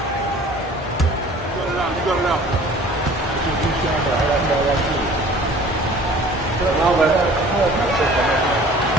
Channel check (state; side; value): normal; both; correlation 0.48